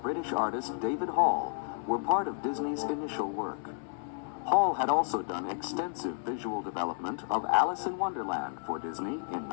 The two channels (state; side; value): silent; right; digital silence